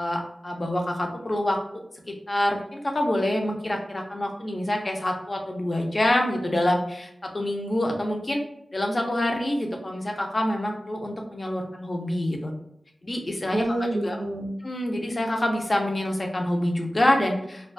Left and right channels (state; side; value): normal; both; correlation 0.95